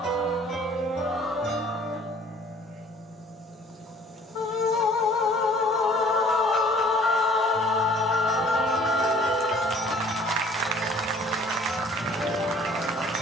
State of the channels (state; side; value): normal; both; correlation 0.54